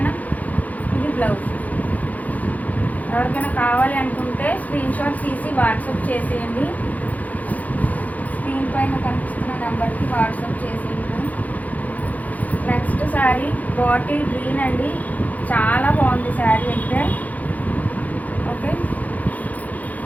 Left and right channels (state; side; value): late; right; 0.077 ms